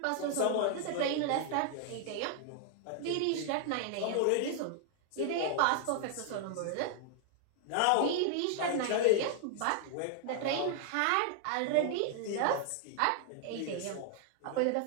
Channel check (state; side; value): different; both; correlation 0.00